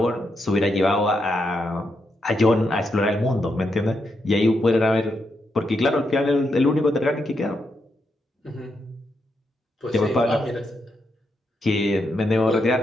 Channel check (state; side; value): normal; both; correlation 0.82